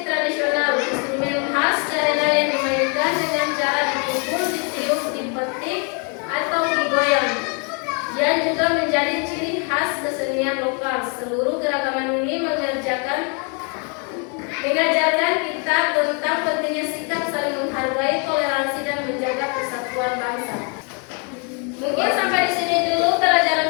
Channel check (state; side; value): quieter; right; 36.7 dB